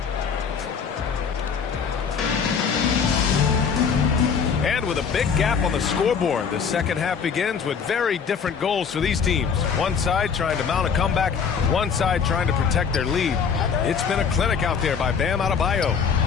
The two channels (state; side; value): quieter; right; 6.4 dB